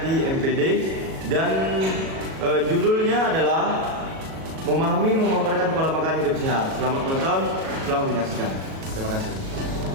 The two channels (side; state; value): left; late; 37 ms